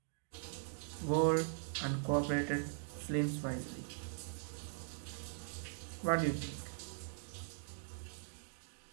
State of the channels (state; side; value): silent; left; digital silence